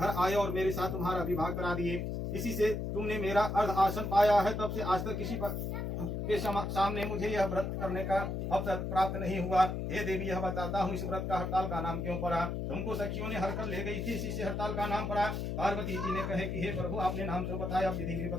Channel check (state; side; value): noise; left; hum, 3 dB below the sound